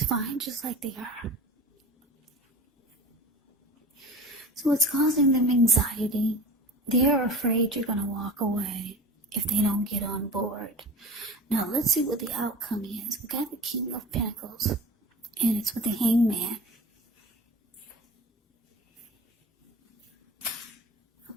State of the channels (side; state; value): both; normal; correlation 0.36